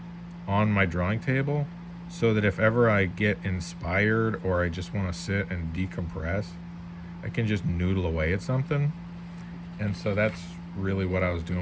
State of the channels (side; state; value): both; identical; correlation 1.00